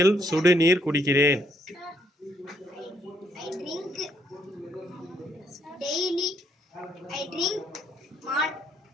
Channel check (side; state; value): both; normal; correlation 0.71